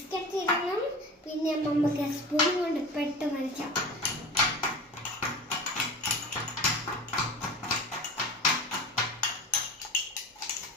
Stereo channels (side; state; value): both; normal; correlation 0.33